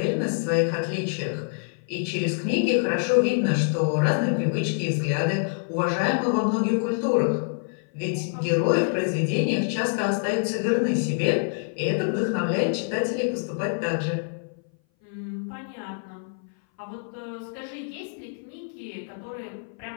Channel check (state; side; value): silent; right; 59 dB below the other